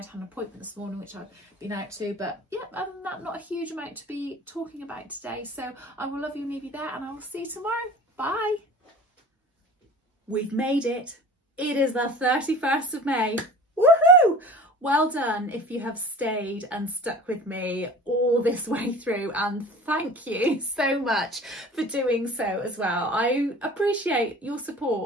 had an appointment this morning which I've been out to, but yeah, other than that, not a huge amount to be talking about today. So I will love you and leave you there, and I will see you tomorrow. Bye. We've made it. It is the 31st of May. Woohoo! Well done if you have stayed and stuck with me all this way through, and thank you so much for doing so as well. I appreciate your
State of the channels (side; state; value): both; normal; correlation 0.41